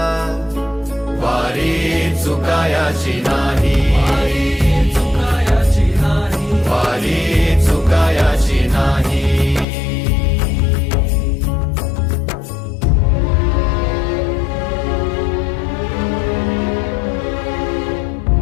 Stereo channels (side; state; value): right; drops out; at 9.7 s